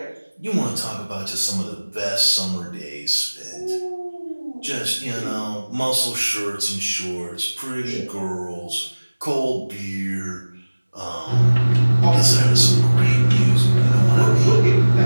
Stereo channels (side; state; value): both; inverted; correlation -1.00